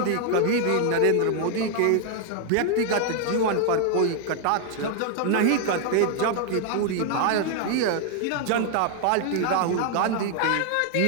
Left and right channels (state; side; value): different; both; correlation 0.00